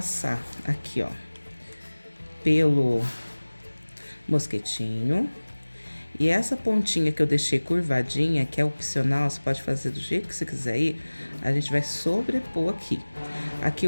aqui, ó, pelo mosquetinho. E essa pontinha que eu deixei curvadinha, que é opcional, você pode fazer do jeito que você quiser ir, a gente vai sobrepor aqui. Aqui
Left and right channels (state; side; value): inverted; both; correlation -1.00